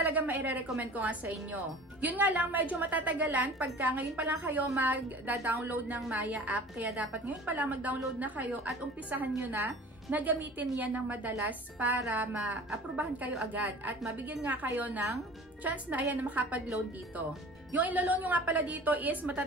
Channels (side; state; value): both; normal; correlation 0.42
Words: maire-recommend ko nga sa inyo. Yun nga lang, medyo matatagalan pagka ngayon pa lang kayo mag-download ng Maya app. Kaya dapat ngayon pa lang mag-download na kayo at umpisahan nyo na gamitin yan ng madalas para ma-aprobahan kayo agad. At mabigyan nga kayo ng chance na ayan na makapag-loan dito. Yung ilo-loan nyo nga pala dito is